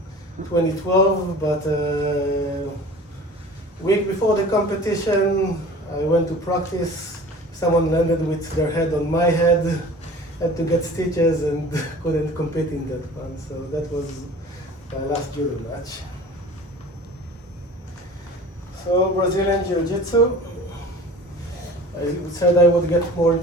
2012, but week before the competition, I went to practice. Someone landed with their head on my head, had to get stitches and couldn't compete in that one. So that was my last judo match. So Brazilian Jiu-Jitsu. I said I would get more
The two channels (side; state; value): both; normal; correlation 0.42